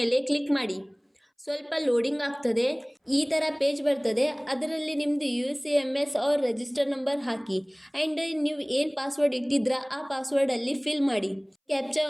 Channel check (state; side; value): identical; both; correlation 1.00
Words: ಕ್ಲಿಕ್ ಮಾಡಿ. ಸ್ವಲ್ಪ ಲೋಡಿಂಗ್ ಆಗ್ತದೆ. ಈ ಥರ ಪೇಜ್ ಬರ್ತದೆ. ಅದರಲ್ಲಿ ನಿಮ್ಮದು UCMS ಅವ್ರ ರಿಜಿಸ್ಟರ್ ನಂಬರ್ ಹಾಕಿ ಆ್ಯಂಡ್ ನೀವು ಏನು ಪಾಸ್ವರ್ಡ್ ಇಟ್ಟಿದ್ರ ಆ ಪಾಸ್ವರ್ಡಲ್ಲಿ ಫಿಲ್ ಮಾಡಿ.